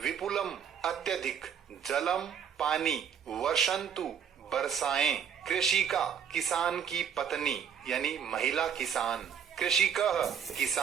विपुलम अत्यधिक जलम पानी वर्षन्तु बरसाएं कृषिका किसान की पत्नी यानी महिला किसान कृषिकः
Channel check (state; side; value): quieter; left; 7.9 dB